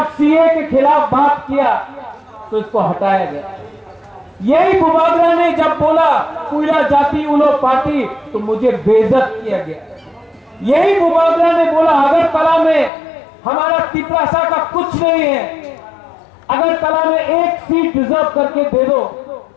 सीए के खिलाफ बात किया तो इसको हटाया गया। यही बुबागरा ने जब बोला कुइला जाति उलो पार्टी तो मुझे बेइज्जत किया गया। यही बुबागरा ने बोला अगरतला में हमारा तिपरासा का कुछ नहीं है, अगरतला में एक सीट रिजर्व करके दे दो।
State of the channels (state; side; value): drops out; right; at 12.9 s